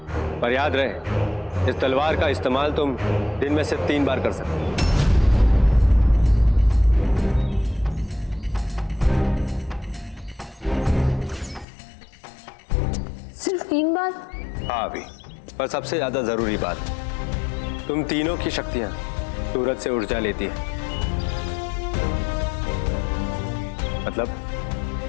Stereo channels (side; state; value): right; drops out; at 11.7 s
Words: पर याद रहे, इस तलवार का इस्तेमाल तुम दिन में से 3 बार कर सकते हो। सिर्फ 3 बार? हाँ अभी, पर सबसे ज्यादा जरूरी बात, तुम तीनों की शक्तियां सूरज से ऊर्जा लेती है। मतलब